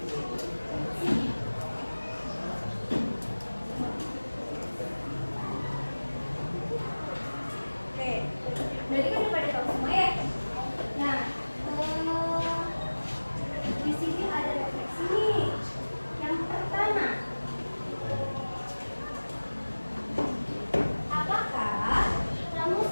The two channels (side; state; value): both; inverted; correlation -1.00